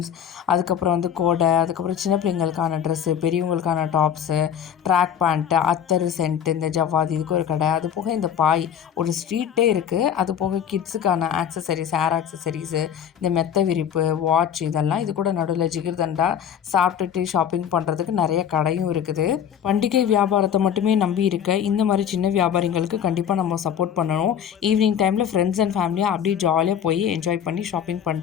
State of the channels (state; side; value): quieter; right; 8.9 dB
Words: அதுக்கப்புறம் வந்து கோடை, அதுக்கப்புறம் சின்ன பிள்ளைங்களுக்கான ட்ரெஸ்ஸு, பெரியவங்களுக்கான டாப்ஸு, ட்ராக் பேண்ட்டு, அத்தர் சென்ட்டு, இந்த ஜவ்வாது, இதுக்கு ஒரு கடை. அது போக இந்த பாய் ஒரு ஸ்ட்ரீட்டே இருக்குது. அது போக கிட்ஸுக்கான ஆக்சசரிஸ், ஹேர் ஆக்சசரிஸு, இந்த மெத்த விரிப்பு, வாட்ச், இதெல்லாம் இது கூட நடுவில் ஜிகிர்தண்டா சாப்பிட்டுட்டு ஷாப்பிங் பண்ணுறதுக்கு நிறைய கடையும் இருக்குது. பண்டிகை வியாபாரத்தை மட்டுமே நம்பி இருக்க இந்த மாதிரி சின்ன வியாபாரிங்களுக்கு கண்டிப்பாக நம்ம சப்போர்ட் பண்ணணும். ஈவினிங் டைமில் ஃப்ரெண்ட்ஸ் அண்ட் ஃபேமிலியாக அப்படியே ஜாலியாக போய் என்ஜாய் பண்ணி ஷாப்பிங்